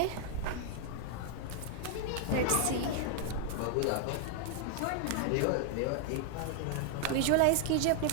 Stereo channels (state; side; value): different; both; correlation 0.00